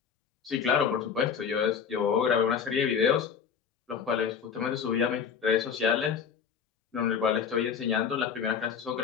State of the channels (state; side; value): quieter; right; 7.0 dB